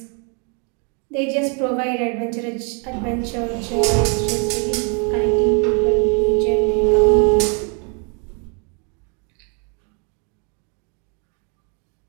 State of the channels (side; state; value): left; quieter; 36.7 dB